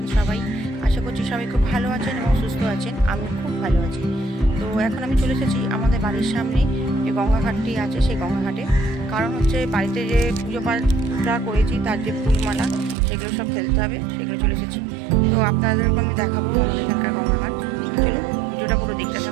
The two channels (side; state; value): left; drops out; at 13.0 s